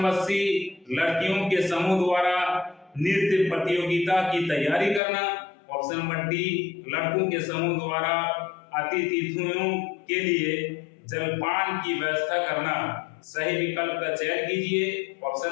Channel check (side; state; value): right; drops out; at 5.0 s